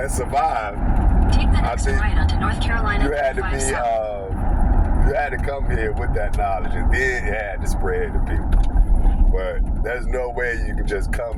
survived. Take the next right onto North Carolina. You had to be, you had to come here with that knowledge, and then it had to spread to people. But there's no way you can just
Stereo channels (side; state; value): both; identical; correlation 1.00